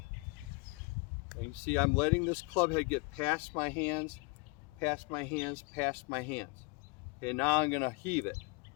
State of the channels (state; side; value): quieter; right; 28.9 dB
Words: And you see I'm letting this club head get past my hands, past my hands, past my hands. Okay, now I'm going to heave it.